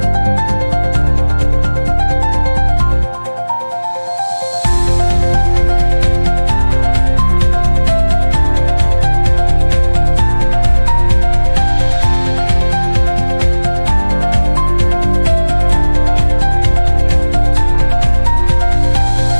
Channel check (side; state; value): both; inverted; correlation -1.00